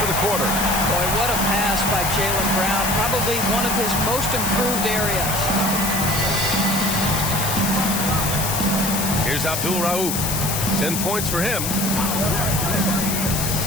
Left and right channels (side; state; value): left; noise; hiss, 2 dB below the sound